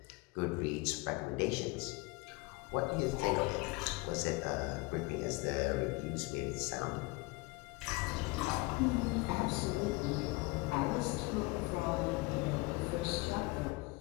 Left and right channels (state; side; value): quieter; right; 24.8 dB